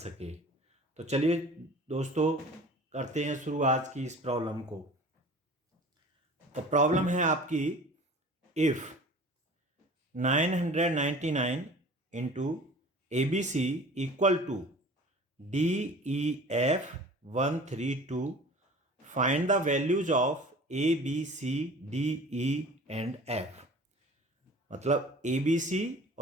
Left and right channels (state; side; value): normal; both; correlation 0.43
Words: तो चलिए दोस्तों, करते हैं शुरू आज की इस प्रॉब्लम को। तो प्रॉब्लम है आपकी, if 999 into ABC equal to DEF 132, find the values of ABC DE and F। मतलब ABC